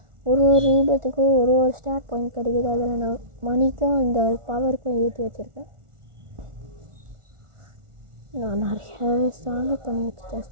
ஒரு ரீபத்துக்கு ஒரு ஸ்டார்ட் பாயிண்ட் கிடைக்குது. அதில் நான் மணிக்கும் இந்த பவருக்கும் ஏற்றி வச்சுருக்கேன். நான் நிறையாவே ஸ்ட்ராங்காக பண்ணி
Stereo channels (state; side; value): late; left; 1.4 ms